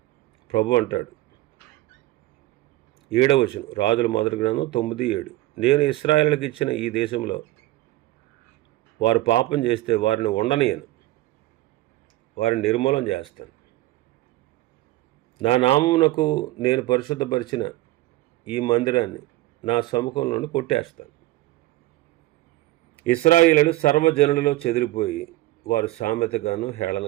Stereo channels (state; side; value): quieter; left; 17.8 dB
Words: ప్రభు అంటాడు, 7వ వచనం, రాజుల మొదటి గ్రంథం 9:7, నేను ఇశ్రాయేలులకు ఇచ్చిన ఈ దేశంలో వారు పాపం చేస్తే వారిని ఉండనీయను, వారిని నిర్మూలన చేస్తాను. నా నామమునకు నేను పరిశుద్ధపరిచిన ఈ మందిరాన్ని నా సముఖంలోనే కొట్టేస్తాను. ఇశ్రాయేలీయులు సర్వజనులలో చెదిరిపోయి వారు సామెతగాను